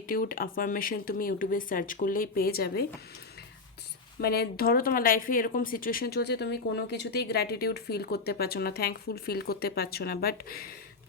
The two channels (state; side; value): quieter; right; 4.2 dB